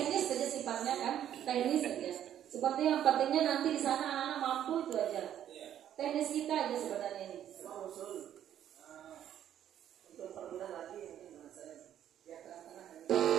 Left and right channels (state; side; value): quieter; left; 10.6 dB